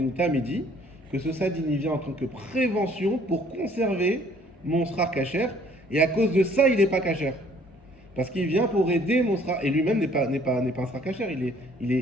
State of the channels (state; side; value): normal; both; correlation 0.59